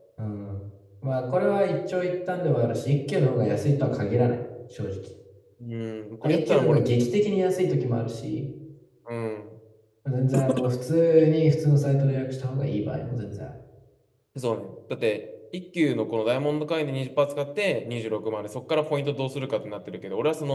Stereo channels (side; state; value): both; identical; correlation 1.00